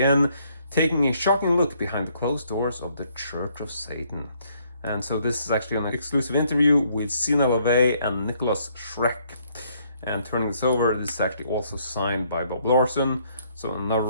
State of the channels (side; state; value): both; inverted; correlation -0.68